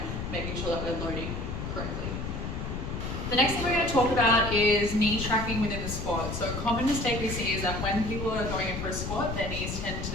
making sure that we're loading correctly. The next thing we're going to talk about is knee tracking within the squat. So a common mistake we see is that when people are going in for a squat, their knees tend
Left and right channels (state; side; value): noise; left; rumble, 4 dB below the sound